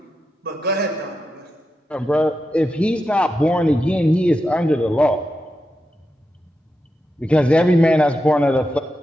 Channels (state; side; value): normal; both; correlation 0.88